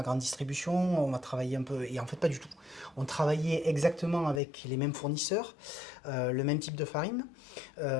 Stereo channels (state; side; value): drops out; right; at 4.4 s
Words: grande distribution, on va travailler un peu, et en fait pas du tout. On travaillait exactement avec les mêmes fournisseurs, le même type de farine.